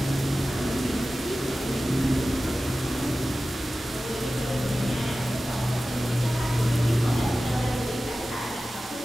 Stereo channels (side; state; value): both; normal; correlation 0.95